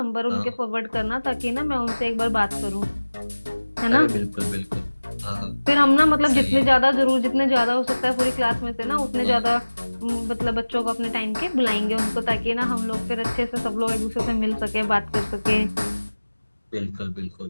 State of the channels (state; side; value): inverted; both; correlation -1.00